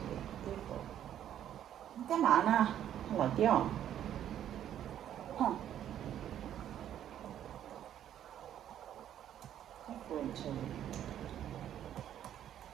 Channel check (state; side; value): quieter; left; 10.7 dB